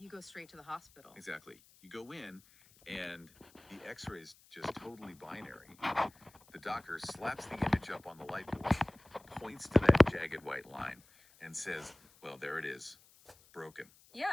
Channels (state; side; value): noise; left; hiss, 27 dB below the sound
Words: go straight to the hospital. Exactly. You go in, and the X-ray is just totally binary. The doctor slaps the image up on the light board, points to that jagged white line, and says, "Well, there it is, broken."